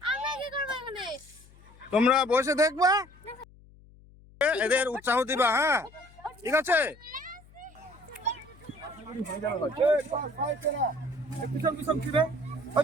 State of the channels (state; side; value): noise; left; hum, 24 dB below the sound